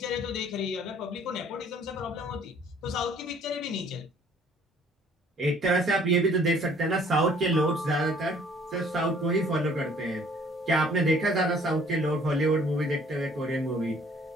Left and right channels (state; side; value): normal; both; correlation 0.57